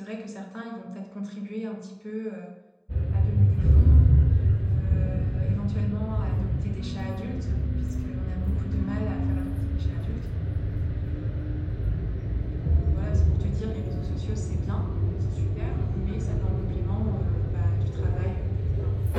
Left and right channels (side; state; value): both; identical; correlation 1.00